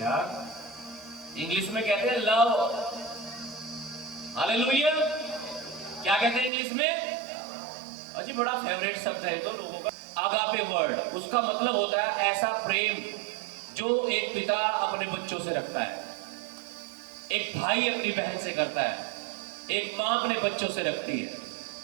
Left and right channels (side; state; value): left; drops out; at 6.5 s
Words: इंग्लिश में कहते हैं लव। हालेलुया। क्या कहते हैं इंग्लिश में? अजी बड़ा फेवरेट शब्द है तो लोगों का। आगापे वर्ड, उसका मतलब होता है ऐसा प्रेम जो एक पिता अपने बच्चों से रखता है, एक भाई अपनी बहन से करता है, एक मां अपने बच्चों से रखती है।